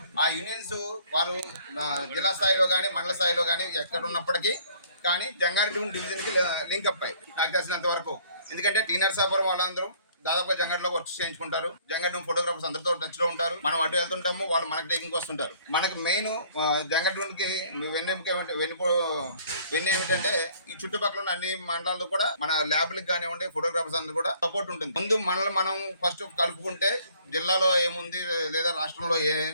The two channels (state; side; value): inverted; both; correlation -0.58